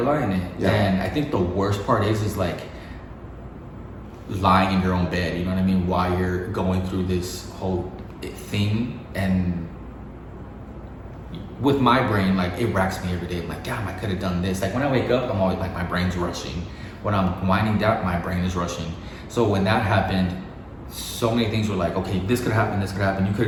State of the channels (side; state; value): both; identical; correlation 1.00